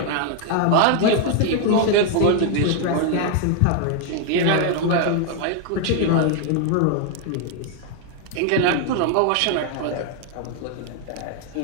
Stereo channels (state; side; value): different; both; correlation 0.00